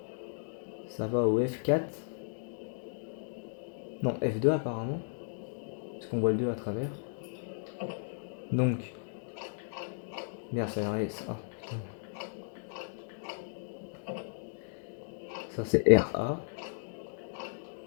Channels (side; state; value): right; silent; digital silence